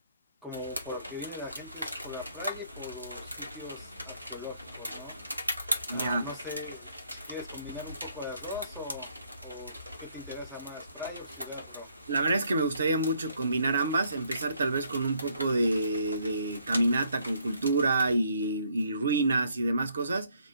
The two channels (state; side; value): inverted; both; correlation -0.67